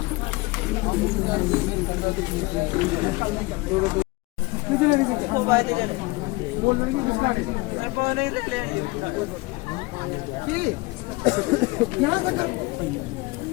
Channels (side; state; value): right; quieter; 23.1 dB